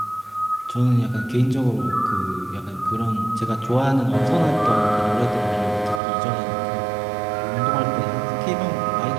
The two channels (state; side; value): drops out; left; at 6.0 s